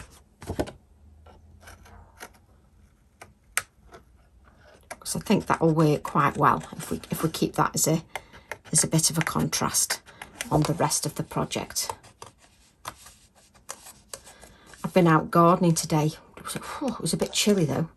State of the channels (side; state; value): both; identical; correlation 1.00